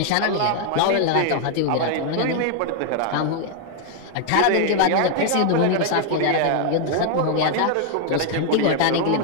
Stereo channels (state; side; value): different; both; correlation 0.00